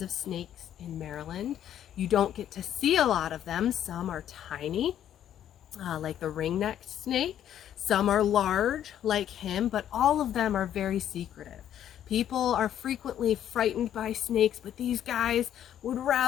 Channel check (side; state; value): right; quieter; 10.6 dB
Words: of snakes in Maryland. You don't get to see a lot of them. Some are tiny, like the ring-necked snake. Some are large, like him, but all of them are very secretive. People are frequently frightened by snakes, but these guys would